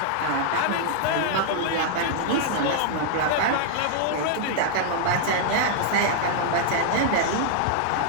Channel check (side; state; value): both; different; correlation -0.01